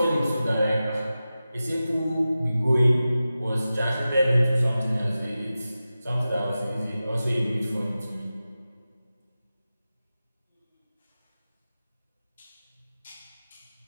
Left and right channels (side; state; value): both; inverted; correlation -0.94